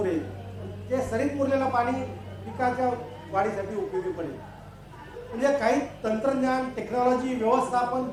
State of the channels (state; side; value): identical; both; correlation 1.00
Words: ते सरीत मुरलेलं पाणी पिकाच्या वाढीसाठी उपयोगी पडेल. म्हणजे काही तंत्रज्ञान, टेक्नॉलॉजी, व्यवस्थापन